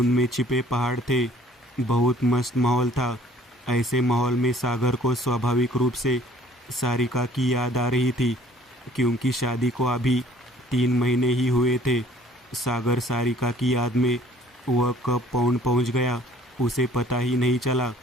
में छिपे पहाड़ थे। बहुत मस्त माहौल था। ऐसे माहौल में सागर को स्वाभाविक रूप से सारिका की याद आ रही थी, क्योंकि शादी को अभी 3 महीने ही हुए थे। सागर सारिका की याद में वह कब पौंड पहुंच गया, उसे पता ही नहीं चला।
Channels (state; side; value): normal; both; correlation 0.56